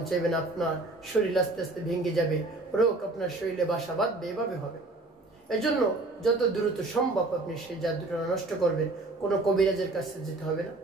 চাইবেন, আপনার শরীর আস্তে আস্তে ভেঙে যাবে, রোগ আপনার শরীরে বাসা বাঁধবে, এভাবে হবে। এজন্য যত দ্রুত সম্ভব আপনি সেই জাদুটা নষ্ট করবেন। কোনো কবিরাজের কাছে যেতে হবে না,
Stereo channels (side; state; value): left; quieter; 3.0 dB